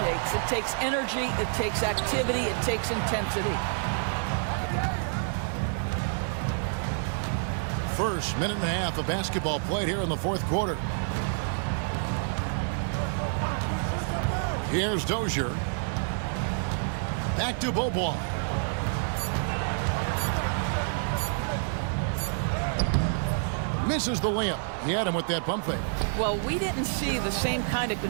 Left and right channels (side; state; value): left; silent; 59 dB below the other